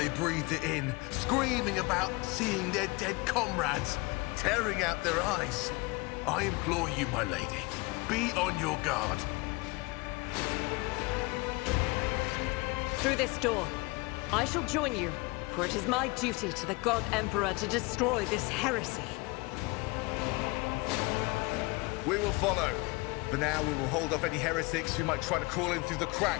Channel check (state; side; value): quieter; right; 25.1 dB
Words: breathed it in, screaming about seeing their dead comrades, tearing out their eyes. I implore you, my lady, be on your guard. Through this door, I shall join you, for it is my duty to the God Emperor to destroy this heresy. We will follow. For now, we will hold off any heretics who might try to crawl in through the